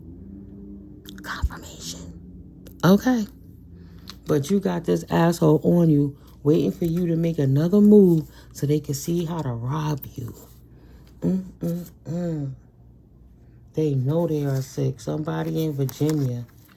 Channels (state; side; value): identical; both; correlation 1.00